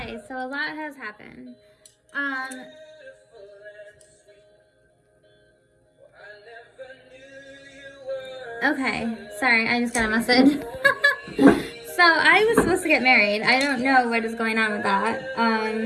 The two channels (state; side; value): identical; both; correlation 1.00